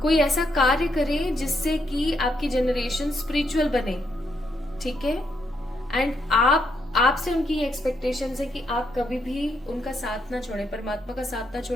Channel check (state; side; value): normal; both; correlation 0.77